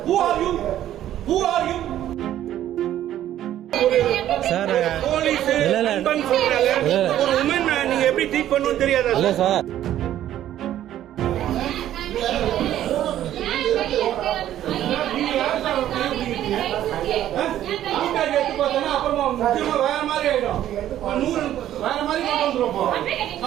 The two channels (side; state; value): left; quieter; 12.1 dB